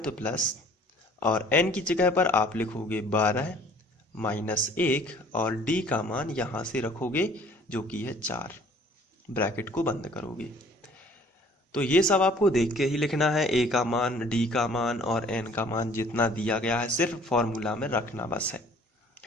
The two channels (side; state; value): both; normal; correlation 0.54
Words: प्लस, और n की जगह पर आप लिखोगे 12 -1 और d का मान यहाँ से रखोगे जो कि है 4, ब्रैकेट को बंद करोगे। तो ये सब आपको देख के ही लिखना है, a का मान, d का मान और n का मान जितना दिया गया है सिर्फ फॉर्मूला में रखना बस है।